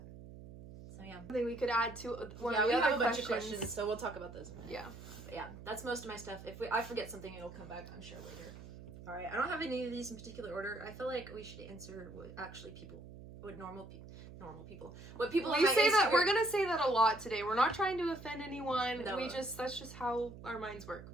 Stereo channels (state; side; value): noise; right; hum, 14 dB below the sound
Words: So yeah. Something we could add to one Yeah, of we the have other a bunch of questions. questions, so we'll talk about those. Yeah. But yeah, that's most of my stuff. If I forget something, it'll come back, I'm sure, later. Alright, I don't have any of these in particular order. I feel like we should answer what actually normal people. What people on We my say that Instagram- we're gonna say that a lot today. We're not trying to offend anyone. No. That's just how our minds work.